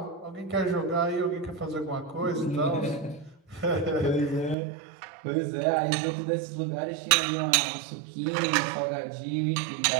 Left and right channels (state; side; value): drops out; left; at 4.5 s